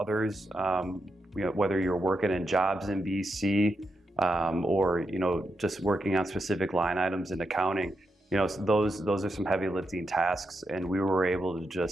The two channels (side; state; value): both; normal; correlation 0.85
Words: whether you're working in jobs in BC or just working on specific line items in accounting, those are some heavy lifting tasks. And we were able to